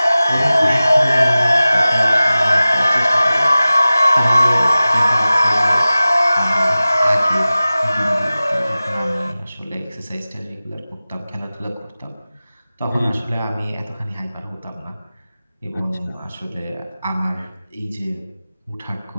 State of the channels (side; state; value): both; inverted; correlation -0.97